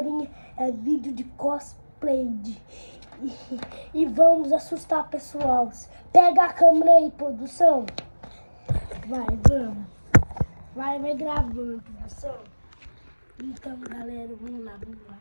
é vídeo de cosplay e vamos assustar pessoal. Pega a câmera aí, produção. Vamos. Vai gravando, produção. Então, galera, vamos lá.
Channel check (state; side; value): inverted; both; correlation -1.00